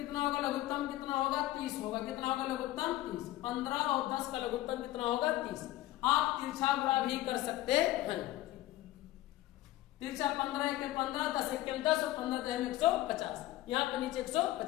होगा लघुत्तम कितना होगा 30 होगा, कितना होगा लघुत्तम 30, 15 और 10 का लघुत्तम कितना होगा 30। आप तिरछा गुणा भी कर सकते हैं, तिरछा 15 × 15 10 × 10 और 15 × 150, यहाँ पे नीचे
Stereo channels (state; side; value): quieter; right; 16.0 dB